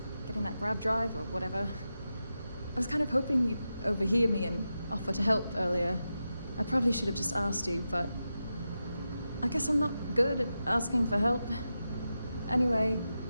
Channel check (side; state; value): both; inverted; correlation -0.90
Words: Getting that grav drive or whatever. I was kind of hoping you'd overhear me and offer to help earlier. I probably should have just asked you, but I guess I'm not good at asking for help. Anyway,